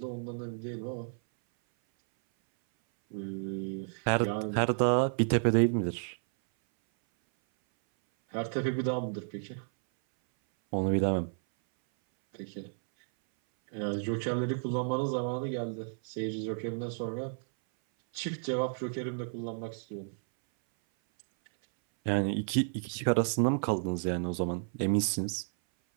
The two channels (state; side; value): silent; left; 57 dB below the other